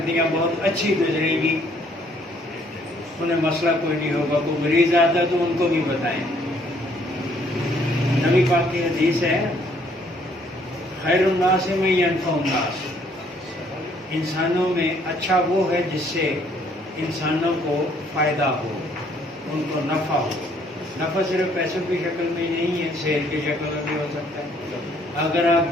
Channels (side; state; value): both; normal; correlation 0.64